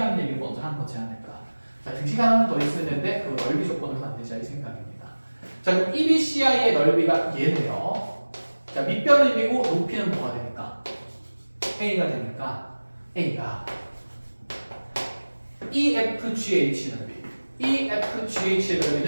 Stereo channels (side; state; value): both; inverted; correlation -1.00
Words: 얘기를 먼저 한 거지 않을까. 자, 등식 하나는 더 있었는데 그 넓이 조건을 만들자 이 생각입니다. 자, 그럼 EBCI의 넓이가 얘네요. 자, 밑변은 1이고 높이는 뭐가 되니까? A가 되니까 A가 EFGH 넓이. EFGH의